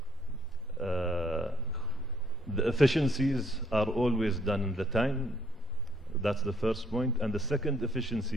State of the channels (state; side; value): normal; both; correlation 0.67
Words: the efficiencies are always done in the time. That's the first point. And the second